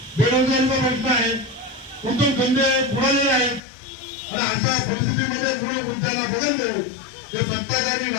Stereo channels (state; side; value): drops out; right; at 3.6 s